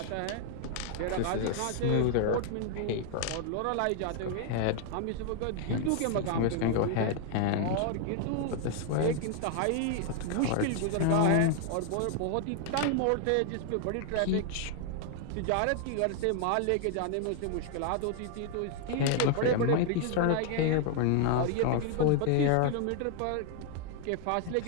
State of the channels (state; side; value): different; both; correlation 0.00